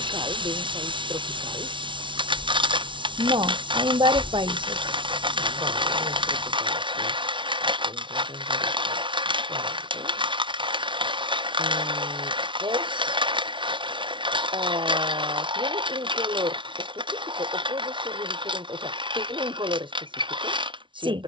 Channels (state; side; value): late; left; 0.24 ms